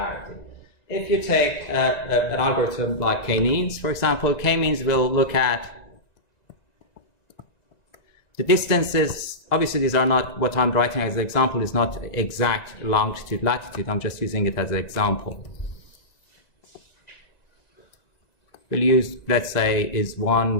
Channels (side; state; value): right; late; 1.9 ms